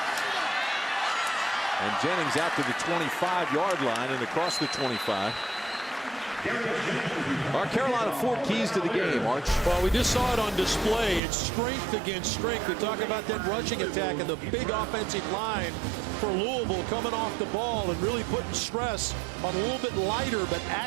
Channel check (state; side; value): drops out; left; at 11.2 s